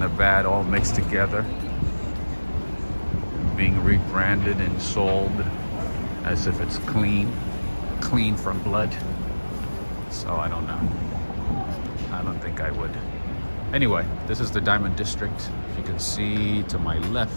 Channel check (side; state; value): both; inverted; correlation -1.00